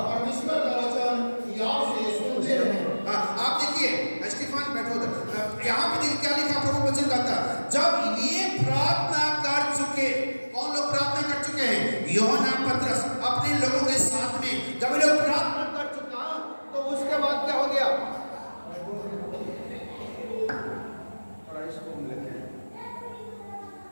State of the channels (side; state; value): both; inverted; correlation -1.00